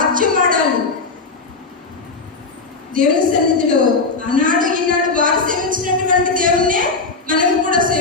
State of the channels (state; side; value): quieter; right; 4.0 dB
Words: దేవుని సన్నిధిలో ఆనాడు ఈనాడు వారు సేవించినటువంటి దేవుణ్ణే మనం కూడా